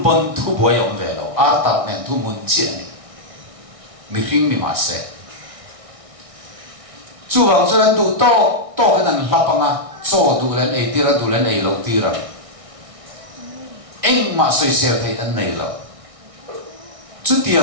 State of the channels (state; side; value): late; left; 1.6 ms